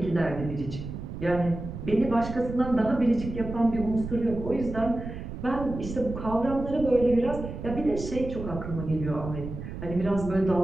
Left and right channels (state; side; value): noise; right; rumble, 8 dB below the sound